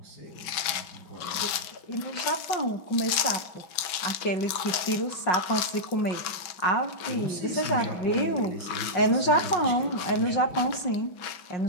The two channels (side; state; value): right; late; 6.0 ms